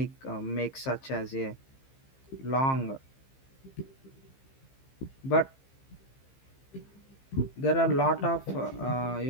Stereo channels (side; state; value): right; late; 15 ms